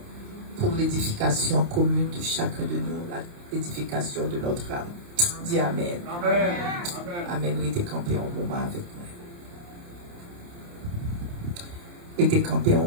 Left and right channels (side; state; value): left; late; 29 ms